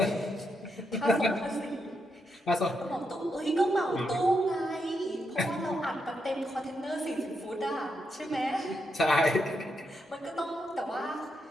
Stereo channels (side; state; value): both; normal; correlation 0.82